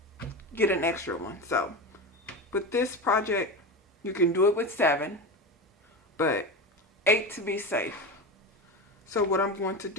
get an extra one. So with this project, you can do it with 7, but 8 to be safe. So what I'm going to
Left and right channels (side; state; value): both; normal; correlation 0.22